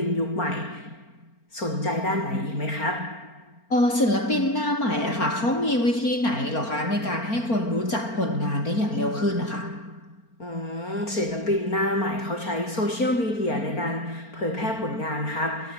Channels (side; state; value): right; late; 4.4 ms